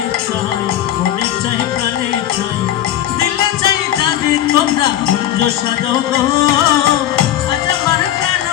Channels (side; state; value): right; quieter; 12.1 dB